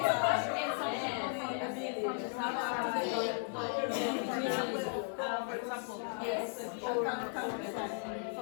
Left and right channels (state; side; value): silent; right; 54 dB below the other